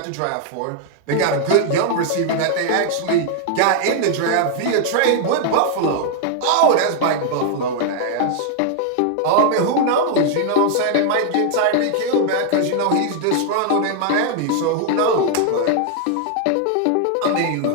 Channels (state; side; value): different; both; correlation 0.00